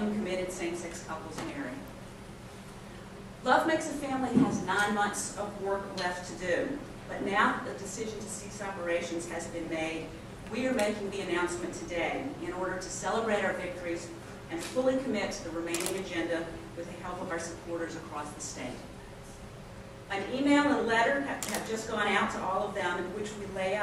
committed same-sex couples marry. Love Makes a Family has 9 months of work left to do, but now that the decision to cease operations has been made, we are making the announcement today in order to celebrate our victories and fully commit to the remaining agenda with the help of our supporters across the state. An email and letter have just gone out to all of them in which we lay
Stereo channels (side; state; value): both; identical; correlation 1.00